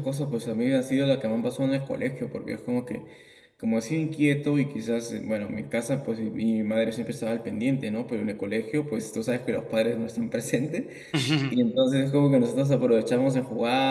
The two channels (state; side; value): identical; both; correlation 1.00